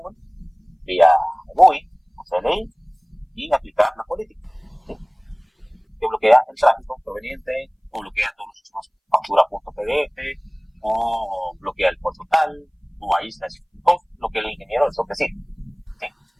vía GUI o CLI y aplicar la política, ¿sí? Que bloquea el tráfico proveniente, o bloquea todos los usuarios factura.pdf, o bloquea el puerto tal, o aísla lo que el ingeniero del SOC decide, ¿sí?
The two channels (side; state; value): both; identical; correlation 1.00